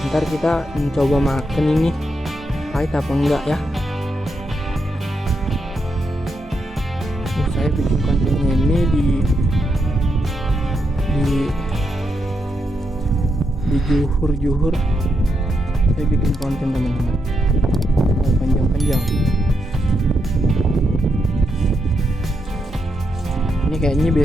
ntar kita mencoba makan ini pahit apa enggak ya. Saya bikin kontennya ini di juhur saya bikin konten teman-teman, panjang-panjang. Ini kayaknya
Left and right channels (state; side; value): normal; both; correlation 0.82